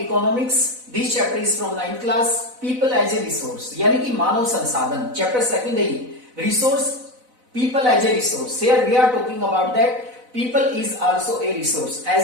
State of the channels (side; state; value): left; late; 4.0 ms